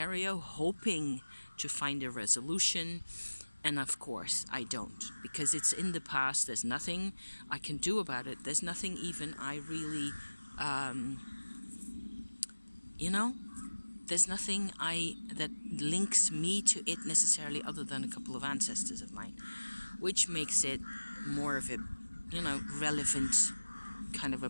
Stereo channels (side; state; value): both; inverted; correlation -1.00